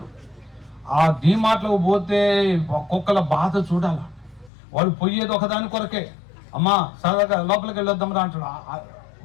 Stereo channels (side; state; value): right; drops out; at 4.5 s